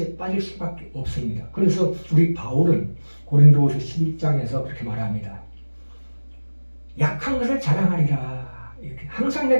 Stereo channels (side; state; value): both; inverted; correlation -1.00